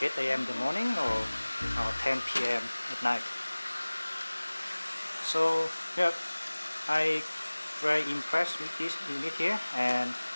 8 a.m. in the morning or 10 p.m. at night. So yeah, I very impressed with this unit here, and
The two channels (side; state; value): both; inverted; correlation -1.00